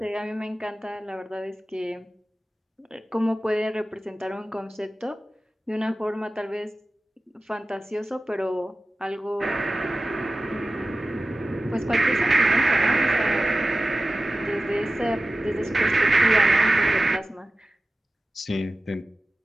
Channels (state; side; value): normal; both; correlation 0.95